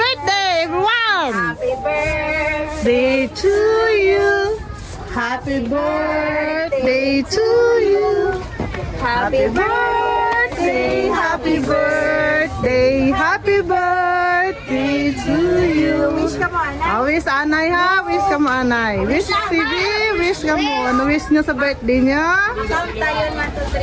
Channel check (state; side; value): identical; both; correlation 1.00